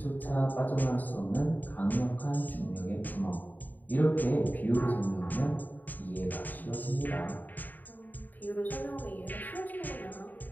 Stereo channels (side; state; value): right; late; 0.086 ms